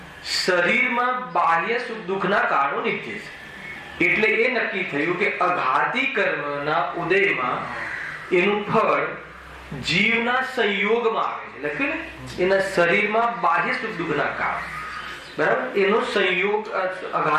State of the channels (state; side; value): identical; both; correlation 1.00